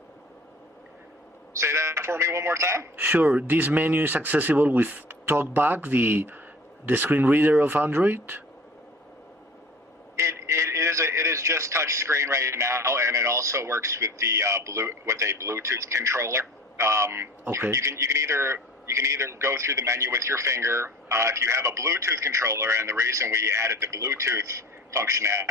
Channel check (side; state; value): both; normal; correlation 0.43